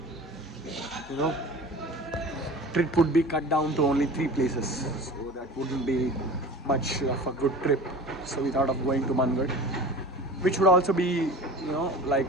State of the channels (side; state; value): both; normal; correlation 0.37